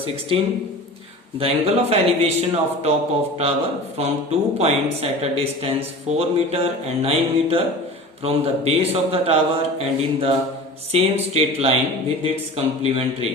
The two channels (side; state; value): both; normal; correlation 0.36